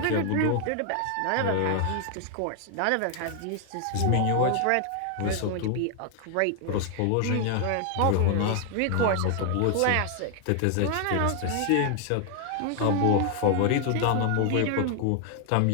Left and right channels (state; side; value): different; both; correlation 0.00